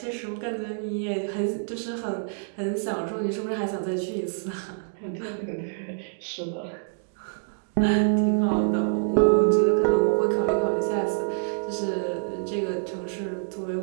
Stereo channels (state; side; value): silent; left; digital silence